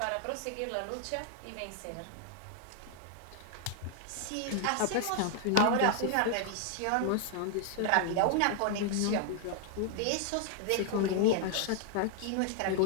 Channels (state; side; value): different; both; correlation 0.00